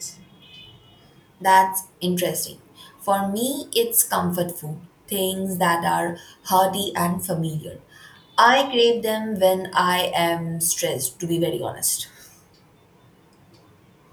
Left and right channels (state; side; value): identical; both; correlation 1.00